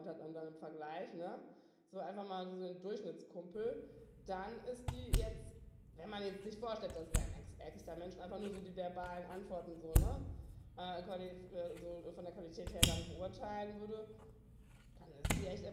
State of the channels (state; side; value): identical; both; correlation 1.00